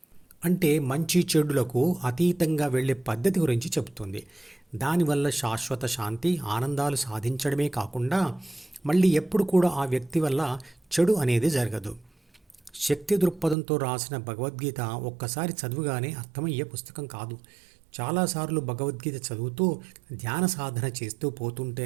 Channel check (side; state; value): left; drops out; at 13.6 s